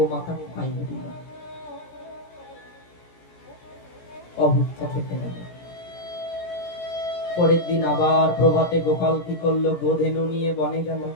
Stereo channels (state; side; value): late; right; 17 ms